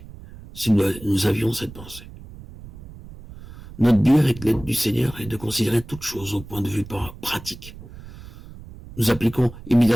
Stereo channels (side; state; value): right; noise; rumble, 17 dB below the sound